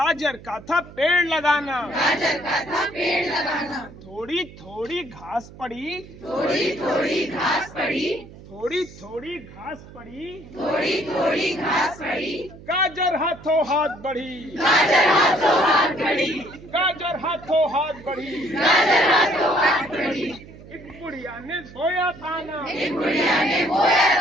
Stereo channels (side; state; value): right; noise; hum, 18 dB below the sound